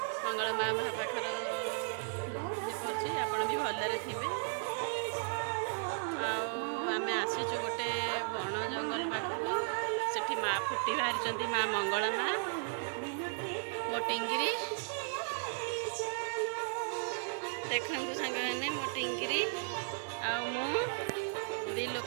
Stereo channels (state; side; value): silent; left; digital silence